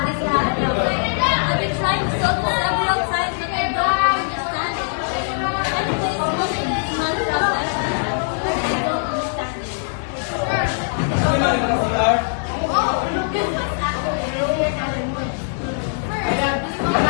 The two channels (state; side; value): silent; right; 65 dB below the other